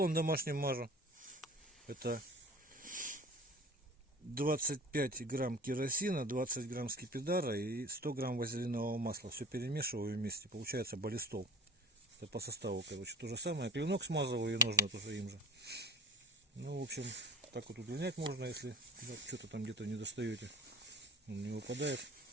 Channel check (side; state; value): both; normal; correlation 0.39